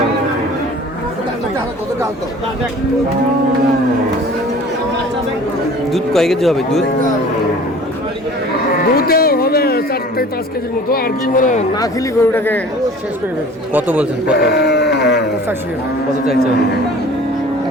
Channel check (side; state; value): both; normal; correlation 0.45